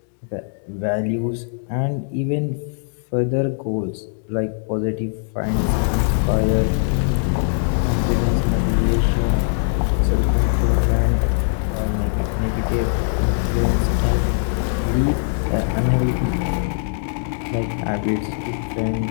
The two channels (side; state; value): right; silent; digital silence